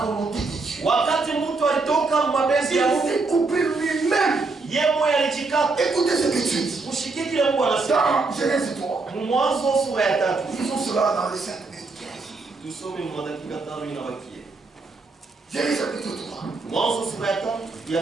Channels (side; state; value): left; quieter; 3.8 dB